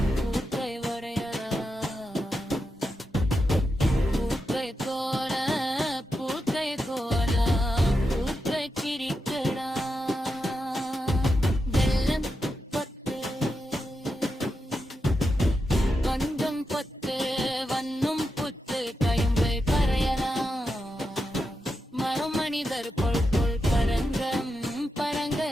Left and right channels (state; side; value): normal; both; correlation 0.88